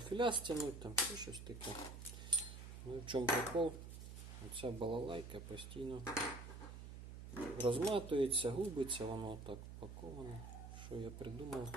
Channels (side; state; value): right; noise; hum, 10 dB below the sound